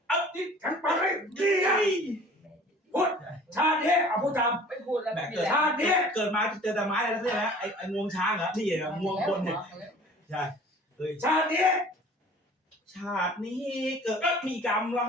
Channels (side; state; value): both; normal; correlation 0.47